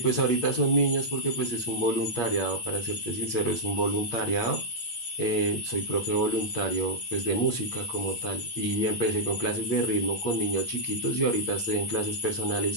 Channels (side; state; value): right; late; 8.7 ms